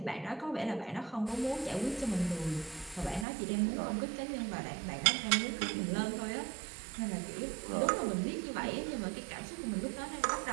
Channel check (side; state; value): left; drops out; at 3.2 s